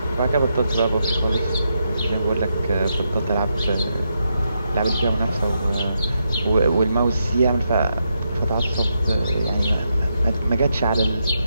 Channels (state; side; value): inverted; both; correlation -0.83